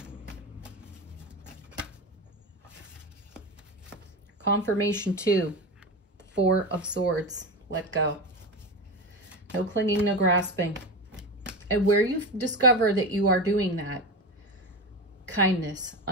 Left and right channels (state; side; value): normal; both; correlation 0.21